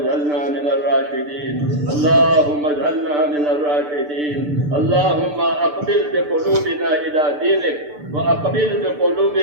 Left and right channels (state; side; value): late; left; 6.8 ms